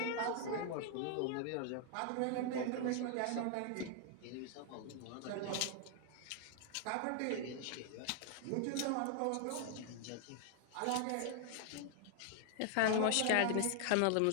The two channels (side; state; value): both; different; correlation 0.00